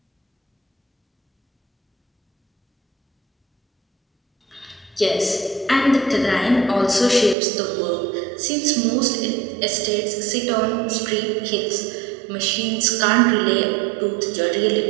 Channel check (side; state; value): left; drops out; at 7.4 s